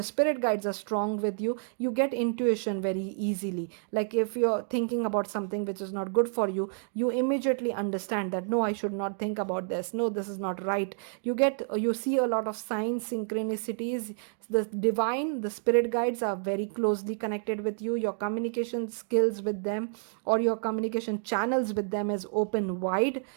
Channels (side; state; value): left; silent; 57 dB below the other